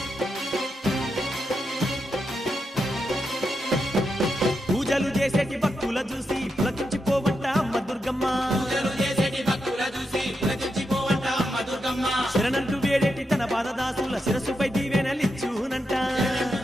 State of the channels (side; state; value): both; normal; correlation 0.85